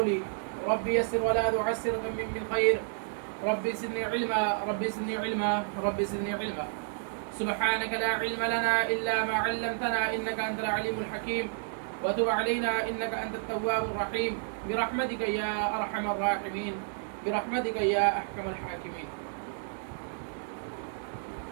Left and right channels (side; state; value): left; silent; digital silence